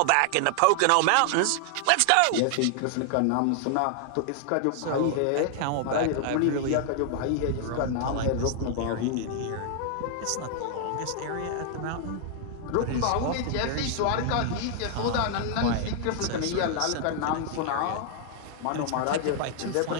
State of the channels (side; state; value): both; different; correlation 0.00